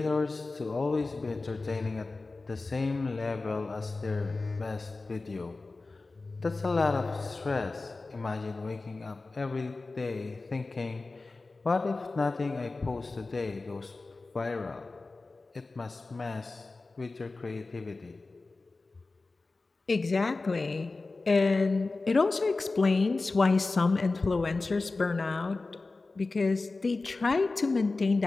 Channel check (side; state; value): right; quieter; 3.5 dB